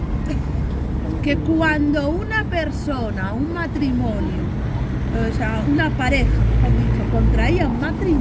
Que cuando una persona, un matrimonio, o sea, una pareja, mejor dicho, contraía un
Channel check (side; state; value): both; identical; correlation 1.00